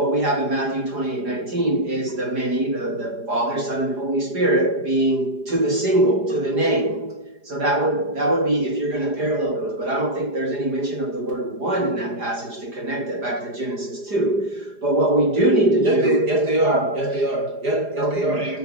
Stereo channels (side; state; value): left; late; 4.9 ms